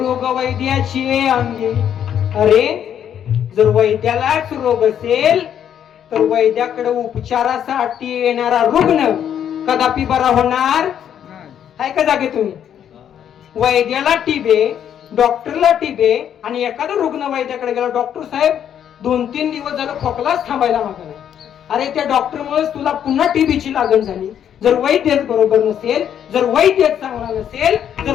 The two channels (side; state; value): right; quieter; 9.4 dB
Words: वैद्याची अंगी. अरे जर वैद्यालाच रोग असेल तर वैद्याकडे उपचारासाठी येणारा रुग्ण कदापि बरा होणार आहे का? जागे तुम्ही वैद्याला टिबे, डॉक्टरला टिबे, आणि एखादा रुग्ण वैद्याकडे गेला, डॉक्टर साहेब 2-3 दिवस झालं खोकलाच थांबायला मागला. अरे त्या डॉक्टरमुळे तुला पुन्हा टीबीची लागण झाली. जर वैद्यच बरोबर नसेल, जर वैद्यच चांगला नसेल, जर